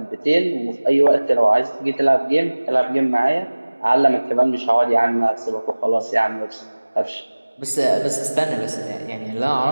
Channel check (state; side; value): inverted; both; correlation -1.00